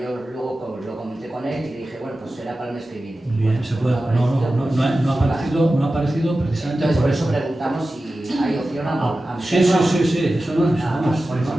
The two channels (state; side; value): normal; both; correlation 0.94